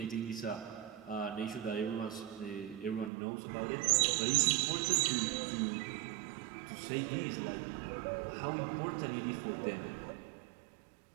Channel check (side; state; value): left; drops out; at 3.1 s